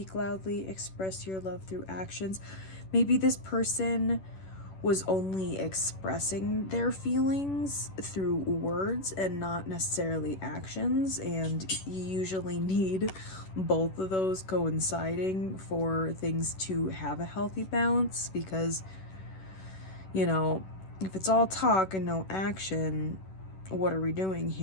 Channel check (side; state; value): right; late; 11 ms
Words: loudly. Express your love through actions. Maybe this person was only expressing their feelings through words and not necessarily actions, and you usually need both of those coinciding for things to have a healthy balance, because, you know, if it's all talk and no action, what are we doing